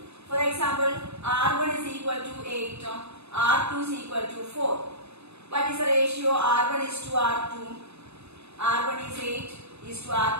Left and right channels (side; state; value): left; late; 0.80 ms